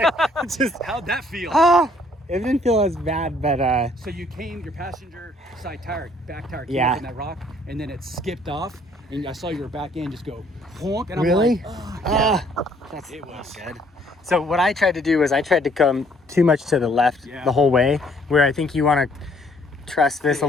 just How'd that feel? ah, It didn't feel as bad, but So you came, your passenger side tire, back tire came Yeah. up in that rock, and then it skipped off, and I saw your back end just go honk, and I'm really? like, oh, yeah. That's It was. not good. So what I tried to do was I tried to come too much to the left Yeah. the whole way, where I think you want to trust this a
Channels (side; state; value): both; normal; correlation 0.63